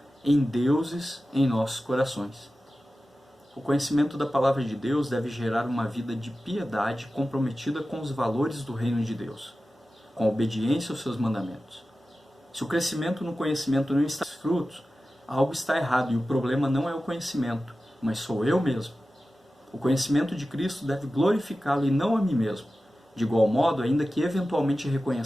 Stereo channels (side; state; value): both; normal; correlation 0.94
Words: em deuses em nossos corações. O conhecimento da palavra de Deus deve gerar uma vida de piedade comprometida com os valores do reino de Deus, com a obediência aos seus mandamentos. Se o crescimento no conhecimento não está frutos, algo está errado e o problema não é o conhecimento, mas sou eu mesmo. O conhecimento de Cristo deve glorificá-lo e não a mim mesmo. De igual modo, ainda que eventualmente